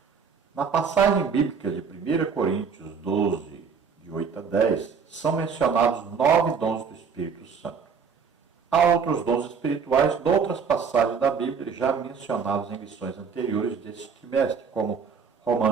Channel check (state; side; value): quieter; left; 6.0 dB